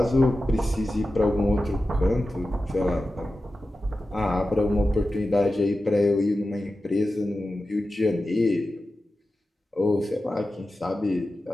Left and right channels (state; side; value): normal; both; correlation 0.93